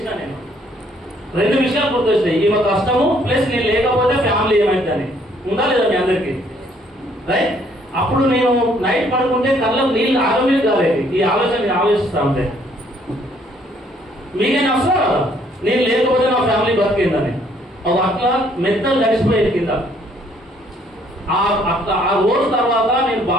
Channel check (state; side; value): normal; both; correlation 0.65